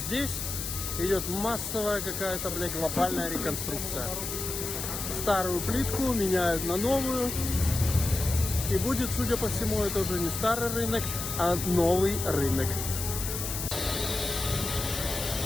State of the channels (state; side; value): noise; left; hiss, 5 dB below the sound